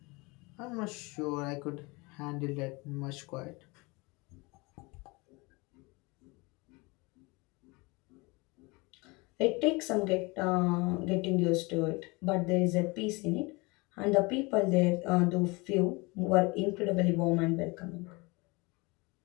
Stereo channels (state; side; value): quieter; right; 26.1 dB